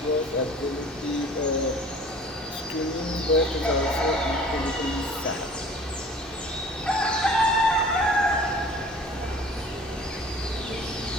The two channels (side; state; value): both; normal; correlation 0.47